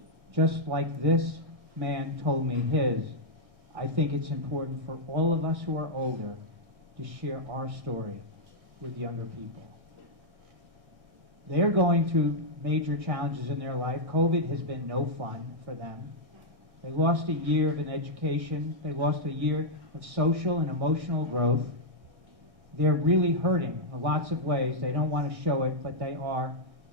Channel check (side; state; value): left; late; 1.6 ms